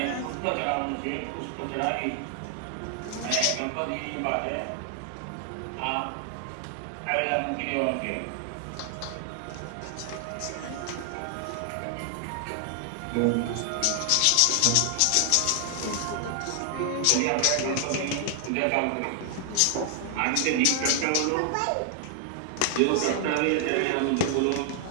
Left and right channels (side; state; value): both; different; correlation 0.00